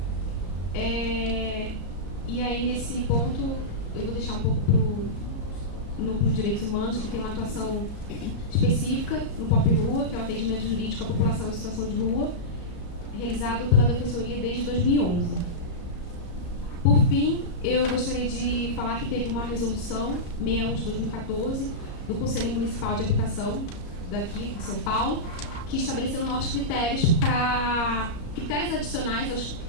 E aí, nesse ponto, eu vou deixar um pouco para o Núcleo de Direitos Humanos, que tem uma atuação específica no POP Rua, que é o atendimento jurídico à população em situação de rua, realizado pela Defensoria desde 2011. Por fim, eu gostaria de falar que teve uma resolução 61 de 2014 do Conselho Municipal de Habitação daqui de São Paulo, que estabeleceu novos critérios adicionais aos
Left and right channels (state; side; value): late; right; 34 ms